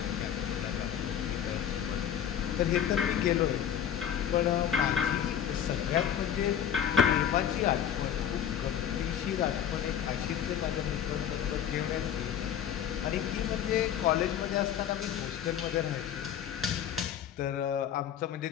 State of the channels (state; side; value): quieter; right; 9.4 dB